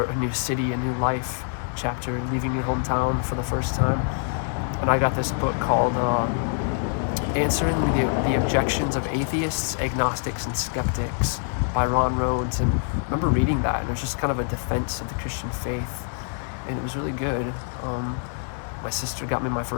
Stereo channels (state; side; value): silent; right; 57 dB below the other